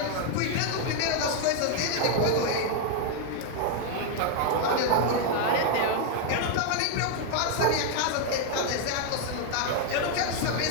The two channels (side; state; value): both; different; correlation 0.00